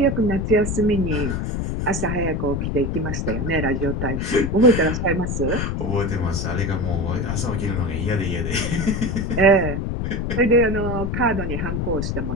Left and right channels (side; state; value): left; noise; rumble, 2 dB below the sound